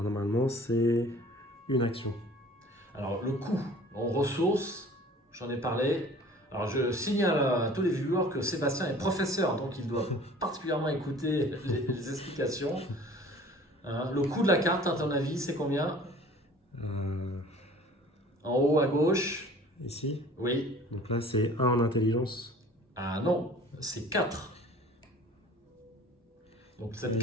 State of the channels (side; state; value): both; normal; correlation 0.48